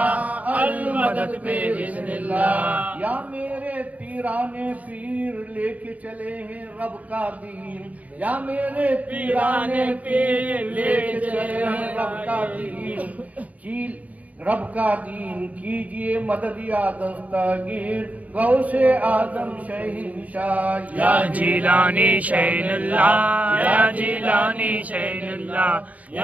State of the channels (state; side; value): late; left; 0.071 ms